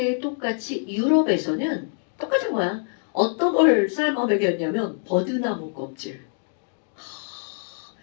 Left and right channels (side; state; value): right; silent; 62 dB below the other